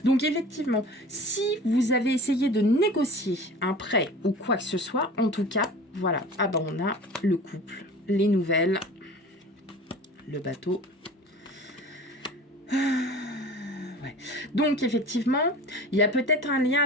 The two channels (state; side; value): normal; both; correlation 0.40